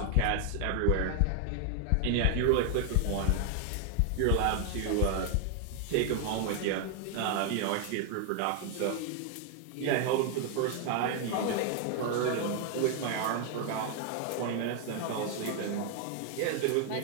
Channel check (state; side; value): different; both; correlation 0.00